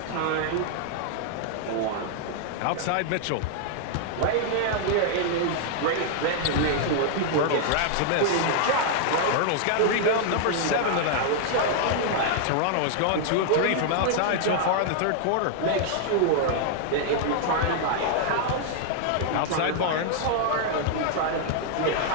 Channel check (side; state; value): both; different; correlation -0.01